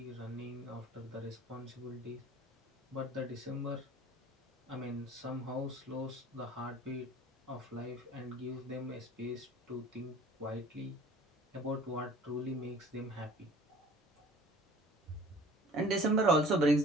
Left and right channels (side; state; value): both; normal; correlation 0.48